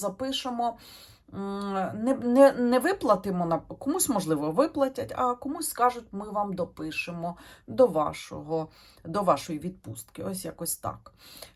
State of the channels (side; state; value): both; identical; correlation 1.00